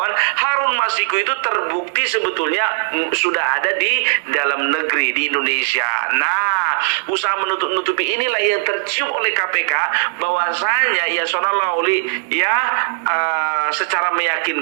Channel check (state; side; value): silent; left; digital silence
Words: Harun Masiku itu terbukti sebetulnya sudah ada di dalam negeri di Indonesia. Nah, usaha menutup-nutupi inilah yang tercium oleh KPK bahwasanya Yasona Lawli ya secara